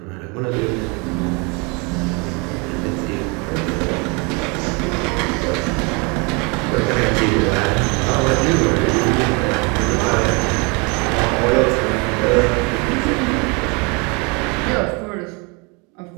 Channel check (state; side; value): quieter; left; 30.4 dB